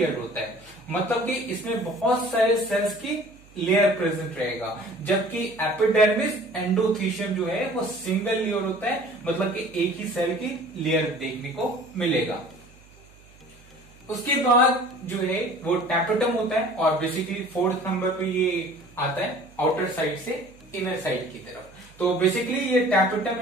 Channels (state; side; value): noise; right; hum, 26 dB below the sound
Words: होता है। मतलब कि इसमें बहुत सारे सेल्स की लेयर प्रेजेंट रहेगा, जबकि एपिडर्मिस एंडोथीशियम जो है वो सिंगल लेयर होता है, मतलब कि एक ही सेल की लेयर देखने को मिलेगा। उसके बाद जो है वो टैपेटम होता है और बेसिकली 4th नंबर पे ये आता है आउटर साइड से इनर साइड की तरफ। तो बेसिकली ये टैपेटम